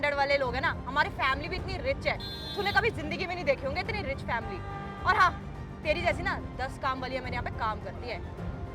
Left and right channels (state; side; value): identical; both; correlation 1.00